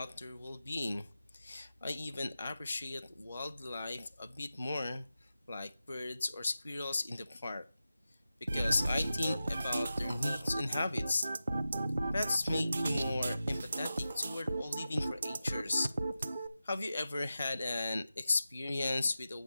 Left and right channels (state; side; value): inverted; both; correlation -0.92